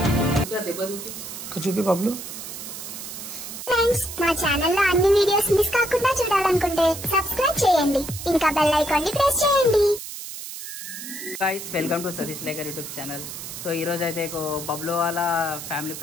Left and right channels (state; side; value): noise; right; hiss, 9 dB below the sound